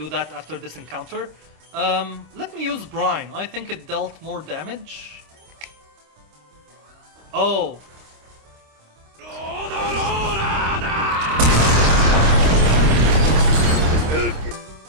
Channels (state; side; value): late; left; 26 ms